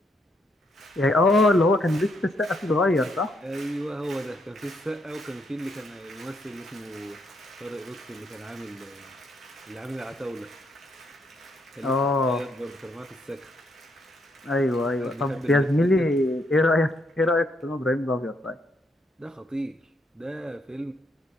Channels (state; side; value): normal; both; correlation 0.75